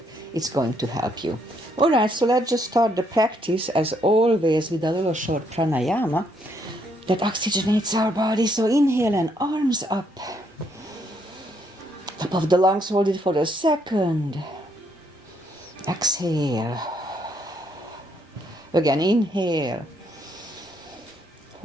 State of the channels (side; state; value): both; normal; correlation 0.72